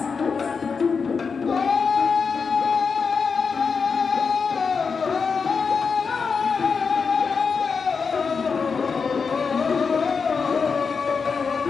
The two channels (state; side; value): quieter; right; 5.4 dB